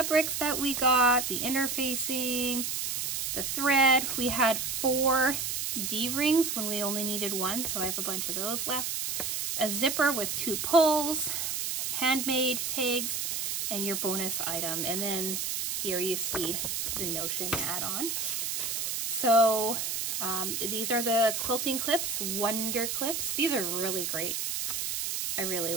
that we got, the interfacing, the thread. We had 4 D-rings when we only needed 1, so I have a bunch of those left. A zipper with 2 pulls, handmade tags, and your bonus item. And then here you see the Notion add-on. So these are the quilting clips, Wonder Clips. These are really great. I really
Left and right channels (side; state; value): right; noise; hiss, 2 dB below the sound